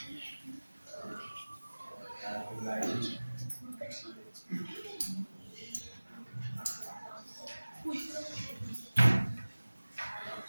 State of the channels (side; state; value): both; inverted; correlation -1.00